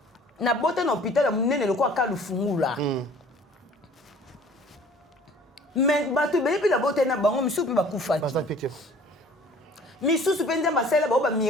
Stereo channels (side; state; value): both; normal; correlation 0.50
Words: Na bota na hôpital munene loko akalu fungula. Mais bato bebi la bota na bango misusu ba kufa. Misusu pe Nzamba sala ba